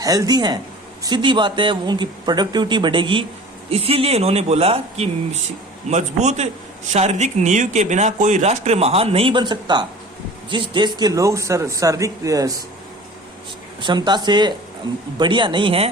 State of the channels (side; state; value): both; normal; correlation 0.42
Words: हैं, सीधी बात है उनकी प्रोडक्टिविटी बढ़ेगी। इसीलिए इन्होंने बोला कि मजबूत शारीरिक नींव के बिना कोई राष्ट्र महान नहीं बन सकता। जिस देश के लोग शारीरिक क्षमता से बढ़िया नहीं